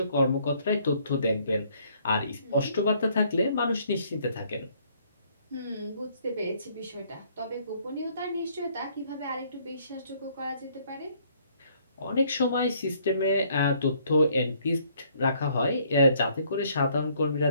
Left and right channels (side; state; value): both; inverted; correlation -0.64